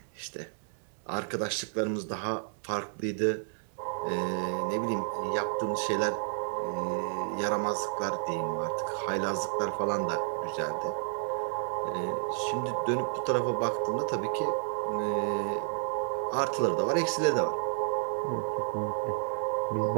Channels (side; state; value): left; silent; digital silence